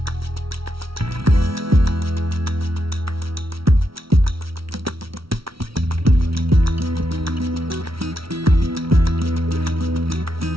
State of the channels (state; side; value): late; left; 0.75 ms